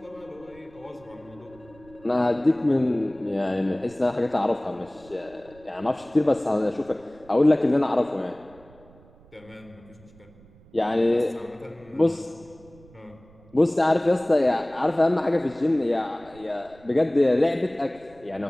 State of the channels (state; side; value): noise; right; rumble, 25 dB below the sound